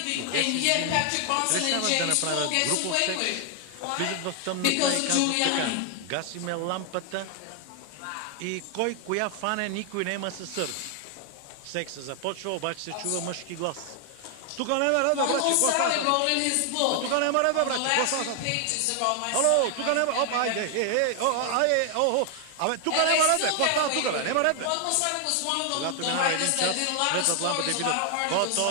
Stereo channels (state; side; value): different; both; correlation 0.00